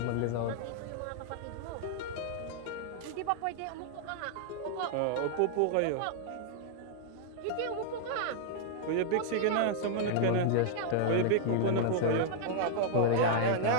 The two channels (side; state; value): both; different; correlation -0.01